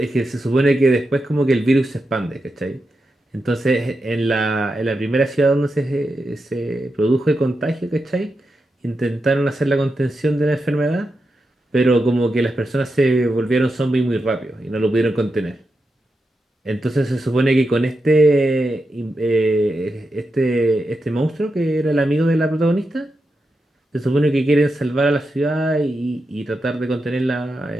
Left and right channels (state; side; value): normal; both; correlation 0.88